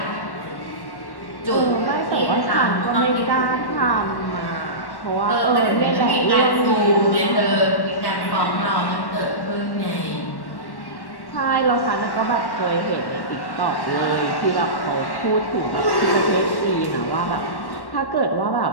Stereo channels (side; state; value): right; late; 1.1 ms